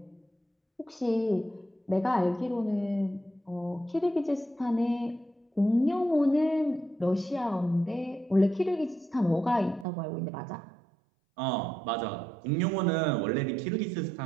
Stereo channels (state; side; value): drops out; left; at 9.9 s